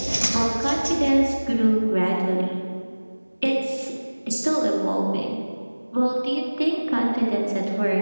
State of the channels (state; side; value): inverted; both; correlation -1.00